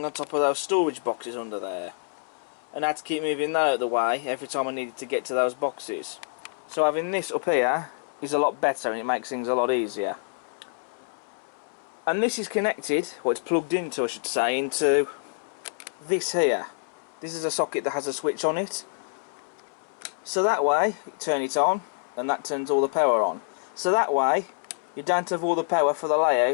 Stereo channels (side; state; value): right; silent; 60 dB below the other